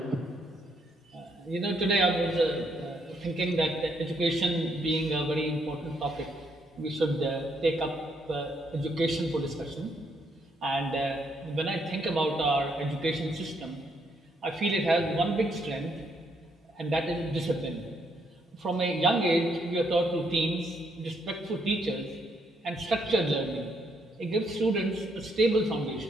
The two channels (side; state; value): both; normal; correlation 0.74